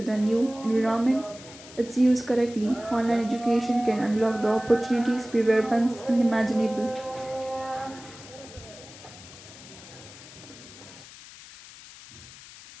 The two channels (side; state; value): left; noise; hiss, 18 dB below the sound